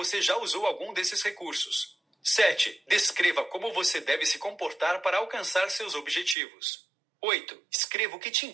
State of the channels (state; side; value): drops out; left; at 6.4 s